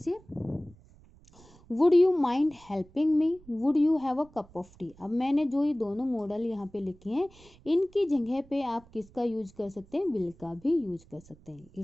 would you mind helping me, would you have a cup of T. अब मैंने जो ये दोनों मॉडल यहाँ पे लिखे हैं, इनकी जगह पे आप किसका यूज कर सकते हैं, विल का भी यूज कर सकते हैं।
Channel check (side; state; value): right; noise; rumble, 25 dB below the sound